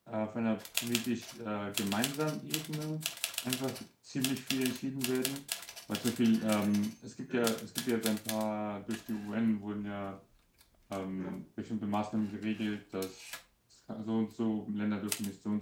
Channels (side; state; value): both; identical; correlation 1.00